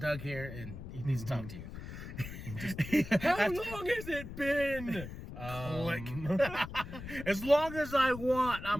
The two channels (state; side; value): noise; left; rumble, 11 dB below the sound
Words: here and he needs to talk to you. How long has it been? As long as I want,